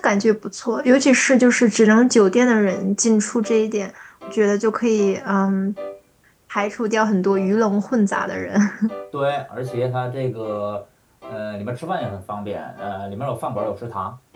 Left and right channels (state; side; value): identical; both; correlation 1.00